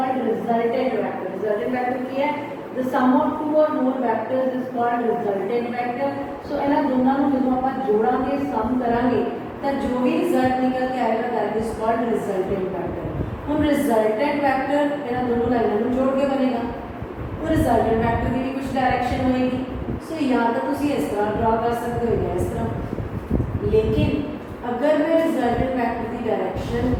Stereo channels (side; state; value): both; identical; correlation 1.00